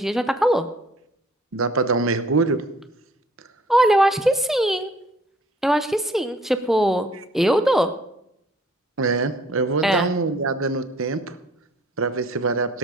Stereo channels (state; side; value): normal; both; correlation 0.57